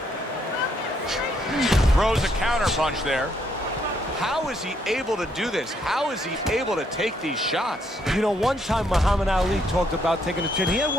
Throws a counter punch there. How is he able to do this? How is he able to take these shots? You know, one time Muhammad Ali talked about taking a chin. He had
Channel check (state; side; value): normal; both; correlation 0.72